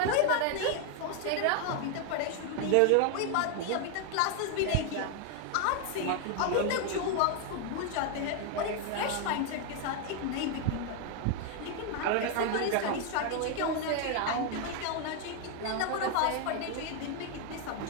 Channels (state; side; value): different; both; correlation 0.00